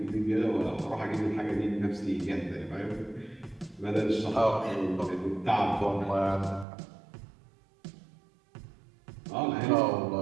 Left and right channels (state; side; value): drops out; left; at 6.7 s